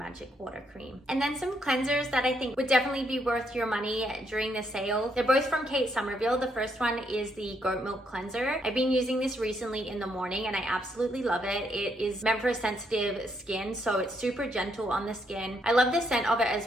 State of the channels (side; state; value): both; normal; correlation 0.75